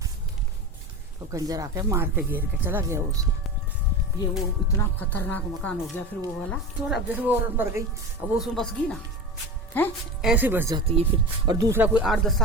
तो कंजर आके मार के घेर के चला गया उसे। ये वो इतना खतरनाक मकान हो गया फिर वो वाला। तो अब जैसे वो औरत मर गई, अब वो उसमें बस गई ना, है ऐसे बस जाती है फिर। और दूसरा कोई 8-10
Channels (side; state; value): both; normal; correlation 0.28